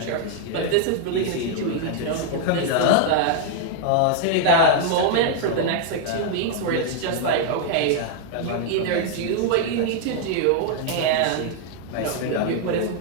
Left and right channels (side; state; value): both; different; correlation 0.00